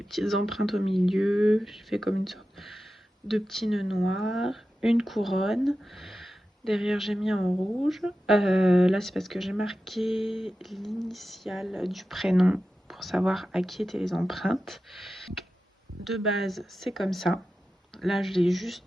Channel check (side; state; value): both; normal; correlation 0.93